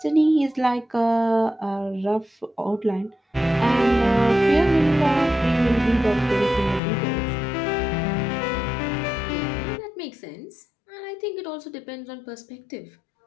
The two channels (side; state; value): right; drops out; at 6.8 s